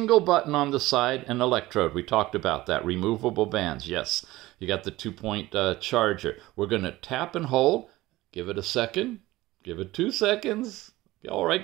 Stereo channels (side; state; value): left; quieter; 18.1 dB